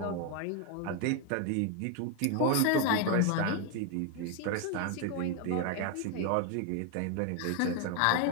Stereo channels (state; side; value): different; both; correlation 0.01